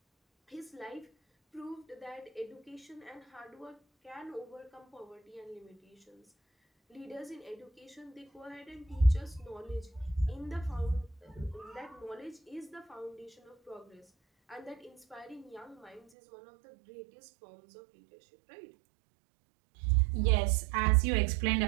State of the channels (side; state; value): left; drops out; at 16.0 s